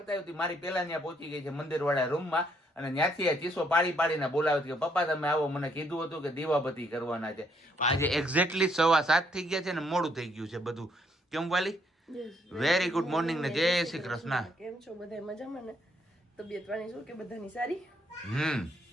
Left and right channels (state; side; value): normal; both; correlation 0.71